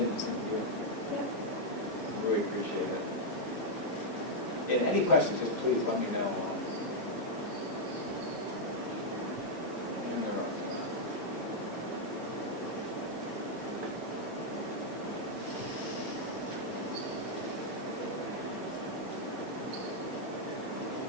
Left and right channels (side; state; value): both; normal; correlation -0.02